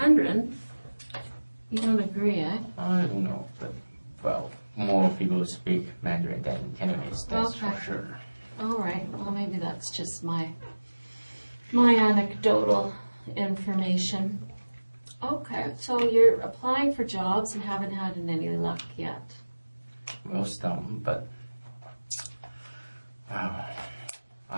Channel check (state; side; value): inverted; both; correlation -1.00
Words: You don't agree, eh? I don't know, but, well, more people speak Mandarin than Cantonese, that's Okay. for sure. All right. Well, maybe that's just my anecdotal information. Okay, so you're applying for jobs and haven't had any luck yet. Well, some, but